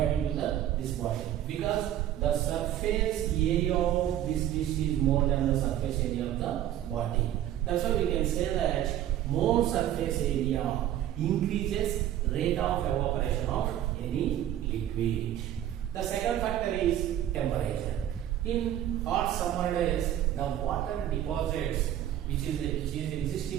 to this bottle, because the surface area of this dish is more than the surface area of the body. That's why we can say that more surface area increases rate of evaporation of any liquid. The second factor is temperature. In hot summer days, the water deposits which is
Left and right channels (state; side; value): quieter; left; 11.9 dB